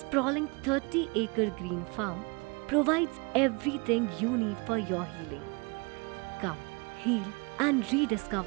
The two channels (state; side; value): quieter; left; 30.1 dB